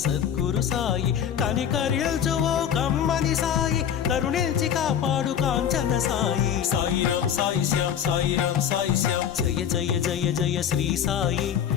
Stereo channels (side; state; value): right; quieter; 8.9 dB